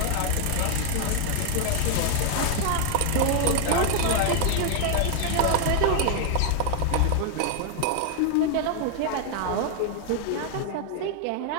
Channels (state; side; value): different; both; correlation 0.00